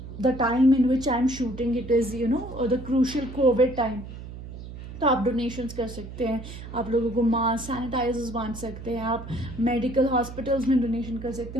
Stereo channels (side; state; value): right; noise; hum, 12 dB below the sound